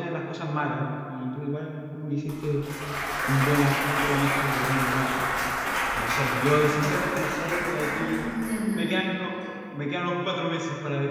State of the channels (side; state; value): both; identical; correlation 1.00